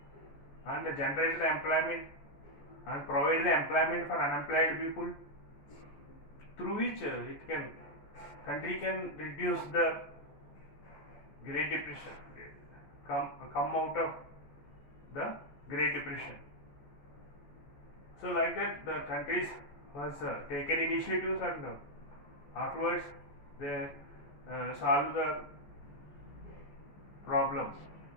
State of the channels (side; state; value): right; late; 14 ms